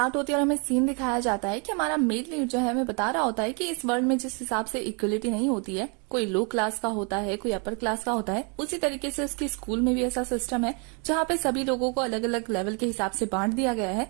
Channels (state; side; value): quieter; left; 35.2 dB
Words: होती है और हमें सीन दिखाया जाता है कि हमारा मेल लीड जो है हमें बता रहा होता है कि इस वर्ल्ड में जिस हिसाब से इक्वलिटी नहीं होती है, कोई लो क्लास का होता है, कोई अपर क्लास का होता है, उसी तरीके से उसके स्कूल में भी ऐसा सिस्टम है जहाँ पे सभी लोगों को अलग अलग लेवल के हिसाब से बांट दिया गया है